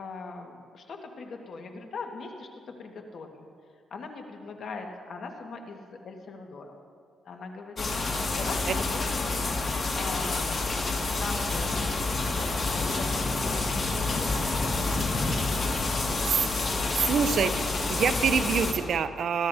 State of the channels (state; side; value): normal; both; correlation 0.79